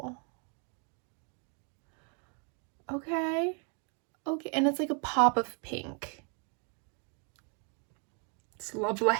Okay. Okay, and it's like a pop of pink. It's lovely.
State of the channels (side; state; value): left; quieter; 38.2 dB